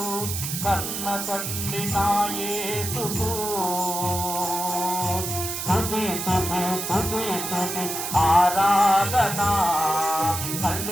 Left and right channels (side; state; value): right; noise; hiss, 4 dB below the sound